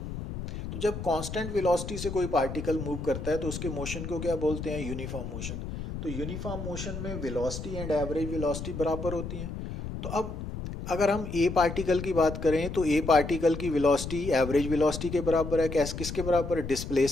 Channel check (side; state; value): left; noise; rumble, 7 dB below the sound